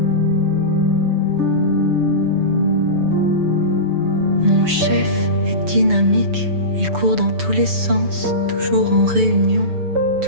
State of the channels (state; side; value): late; left; 6.9 ms